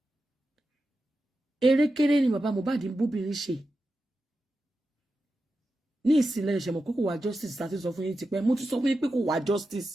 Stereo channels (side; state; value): both; normal; correlation 0.91